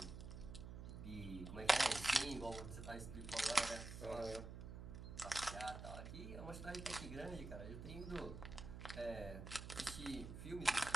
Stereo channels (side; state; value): right; noise; hum, 9 dB below the sound